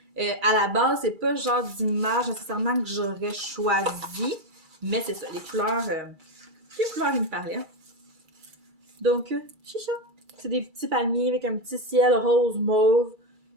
À la base, c'est pas le genre d'image nécessairement que j'aurais choisi. Mais c'est ça, les couleurs, ils me parlaient. Donc, chicha. C'est des petits palmiers avec un petit ciel rose mauve.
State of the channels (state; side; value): late; left; 2.3 ms